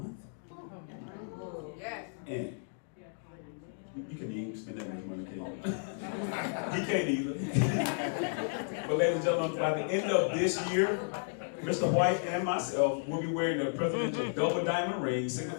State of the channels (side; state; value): right; silent; digital silence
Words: Yes. And you can even spend that much money, can't you? He can't either. But ladies and gentlemen, by the end of this year, Mr. White and myself will be wearing the presidential double diamond ring,